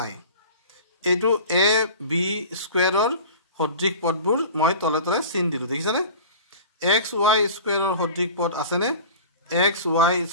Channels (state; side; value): inverted; both; correlation -0.39